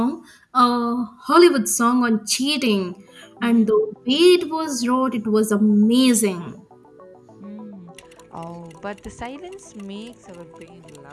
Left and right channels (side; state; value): both; identical; correlation 1.00